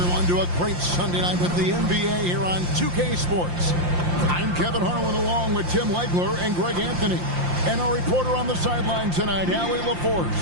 to a great Sunday night with the NBA here on 2K Sports. I'm Kevin Harlan along with Tim Legler and Greg Anthony. And our reporter on the sideline tonight, Allie LaForce.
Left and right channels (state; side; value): late; left; 5.7 ms